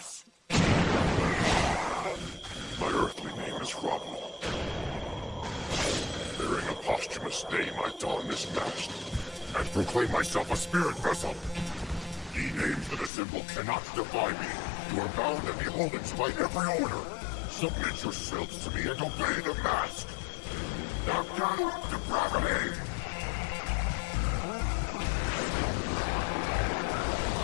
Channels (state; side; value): drops out; right; at 13.1 s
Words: My earthly name is Rabu. Bearing a posthumous name, I don this mask and proclaim myself a spirit vessel. Ye names that assemble cannot defy me. You are bound and beholden to my every order. Submit yourselves to me and obey the mask. Knock down depravity!